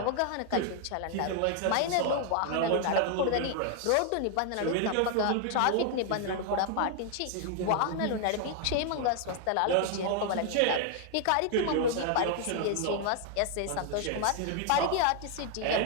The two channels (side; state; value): both; different; correlation 0.00